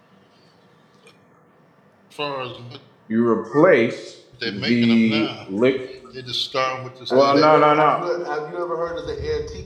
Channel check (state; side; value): identical; both; correlation 1.00